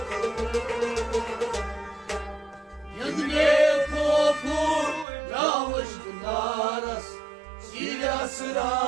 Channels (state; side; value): drops out; left; at 5.1 s